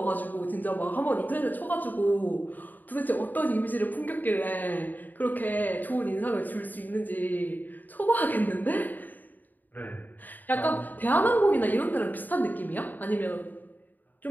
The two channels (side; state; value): right; late; 0.086 ms